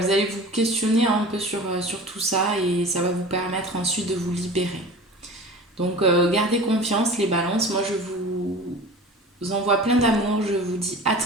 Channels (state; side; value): normal; both; correlation 0.37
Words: allez vous questionner un peu sur tout ça et ça va vous permettre ensuite de vous libérer. Donc gardez confiance les balances. Moi je vous envoie plein d'amour. Je vous dis à